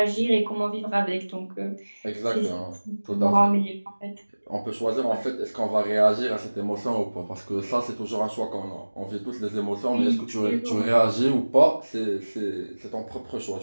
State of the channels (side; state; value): both; inverted; correlation -1.00